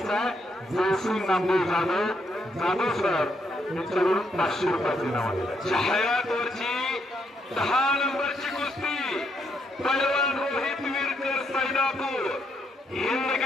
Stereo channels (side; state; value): both; normal; correlation 0.76